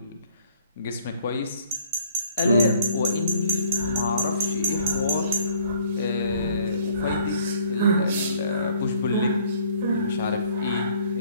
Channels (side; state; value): both; inverted; correlation -0.60